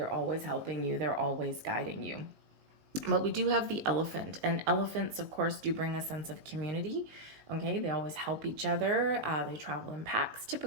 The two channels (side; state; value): left; late; 19 ms